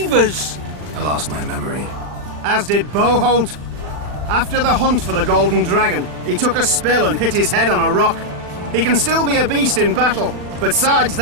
I lost my memory. As did Boholt. After the hunt for the Golden Dragon, he took a spill and hit his head on a rock. He can still be a beast in battle, but besides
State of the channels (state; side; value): late; left; 40 ms